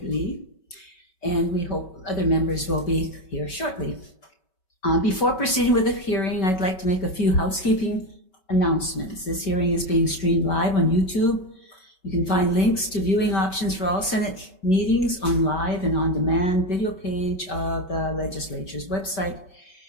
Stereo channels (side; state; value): right; late; 5.2 ms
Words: Lee, and we hope other members will be here shortly. Before proceeding with the hearing, I'd like to make a few housekeeping announcements. This hearing is being streamed live on YouTube. You can find links to viewing options for all Senate meetings on live and on-demand video page of the legislature's website.